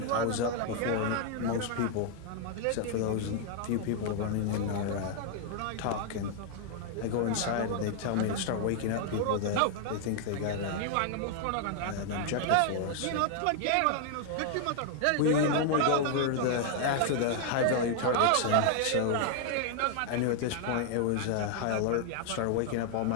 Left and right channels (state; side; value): different; both; correlation 0.00